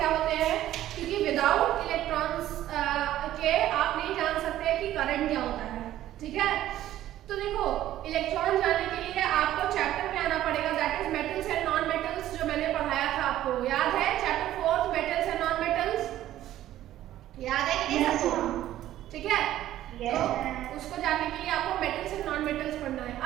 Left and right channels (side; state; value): left; quieter; 13.3 dB